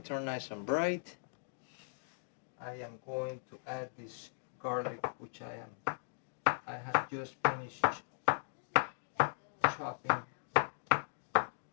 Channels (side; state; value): right; silent; digital silence